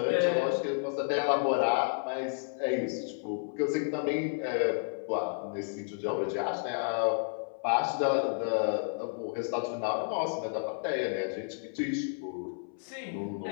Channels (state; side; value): silent; right; 57 dB below the other